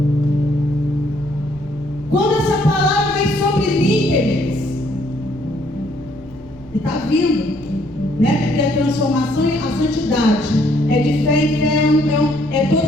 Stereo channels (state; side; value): noise; right; rumble, 21 dB below the sound